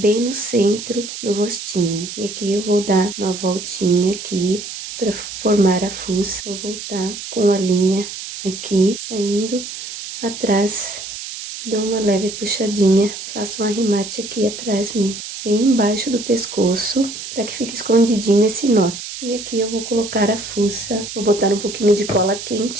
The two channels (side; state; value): right; noise; hiss, 9 dB below the sound